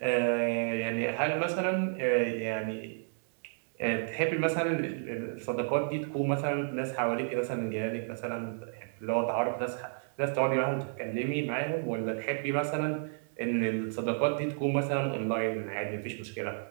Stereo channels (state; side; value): silent; left; digital silence